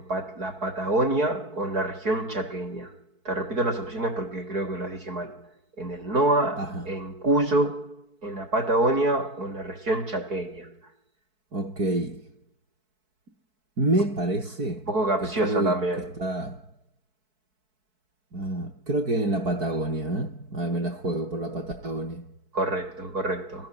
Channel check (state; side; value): late; left; 4.6 ms